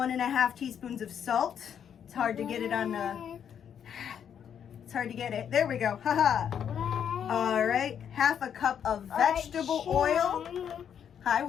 teaspoons of salt. It's hard to get it on the, it's hard to get it. There we go, haha. All right, half a cup of vegetable oil. Hi,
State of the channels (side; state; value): right; quieter; 8.5 dB